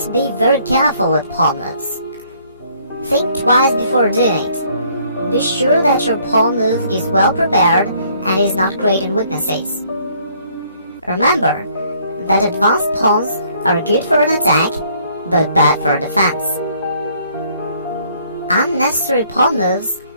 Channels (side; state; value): both; inverted; correlation -0.63